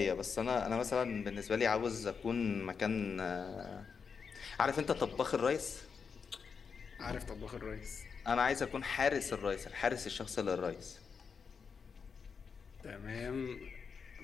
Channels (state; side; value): quieter; right; 5.9 dB